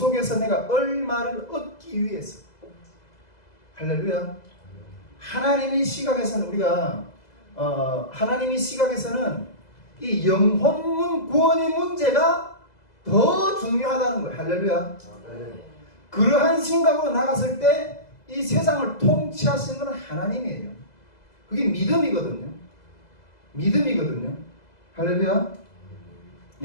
내가 얼마를 얻기 위해서. 할렐루야. 하나님의 시각에서는 우리가 하나님의 시각에서는 이 영혼 구원의 문제가 더 중요하다는 거예요. 할렐루야. 그러한 생각으로 나갔을 때 이 세상을 통치하시는 것은 하나님이에요. 그게 믿음이거든요. 믿음이거든요. 할렐루야.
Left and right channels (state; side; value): late; right; 2.0 ms